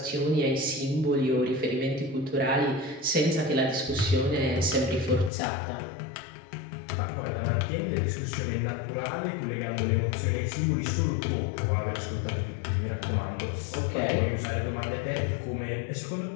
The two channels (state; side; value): drops out; right; at 5.3 s